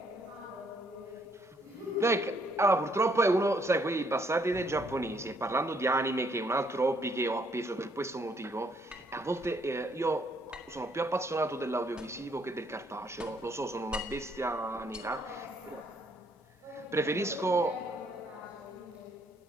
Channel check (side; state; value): both; normal; correlation 0.69